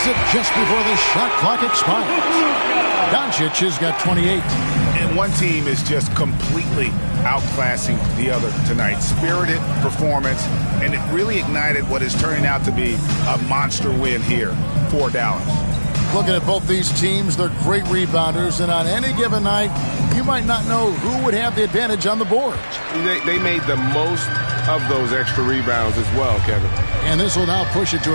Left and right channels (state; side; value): inverted; both; correlation -1.00